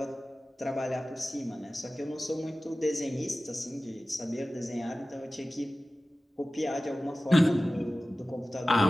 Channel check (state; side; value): normal; both; correlation 0.96